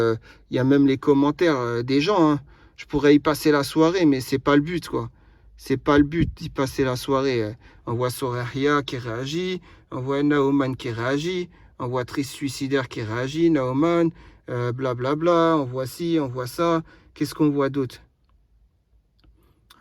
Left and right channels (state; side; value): identical; both; correlation 1.00